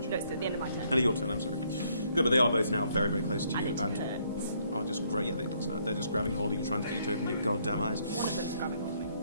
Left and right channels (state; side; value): inverted; both; correlation -0.69